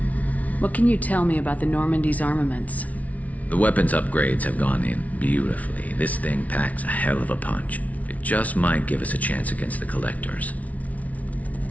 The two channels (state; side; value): late; right; 0.069 ms